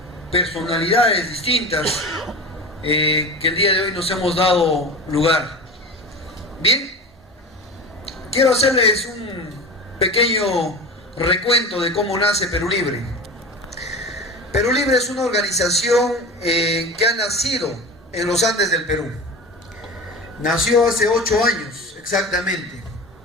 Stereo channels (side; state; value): both; normal; correlation 0.31